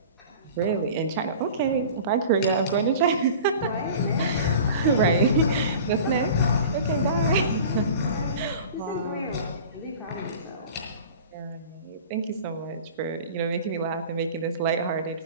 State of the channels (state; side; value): inverted; both; correlation -0.40